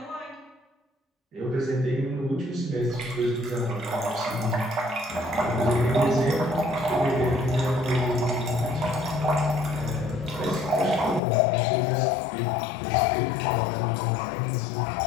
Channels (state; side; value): drops out; right; at 11.2 s